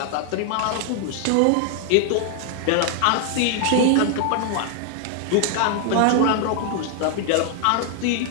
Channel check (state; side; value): different; both; correlation 0.00